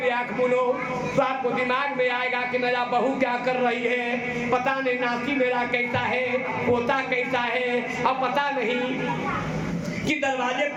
आंख मूंदो तो आपको दिमाग में आएगा कि मेरा बहू क्या कर रही है, पता नहीं नाती मेरा कैसा है, पोता कैसा है, अब पता नहीं कि दरवाजे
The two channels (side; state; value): both; identical; correlation 1.00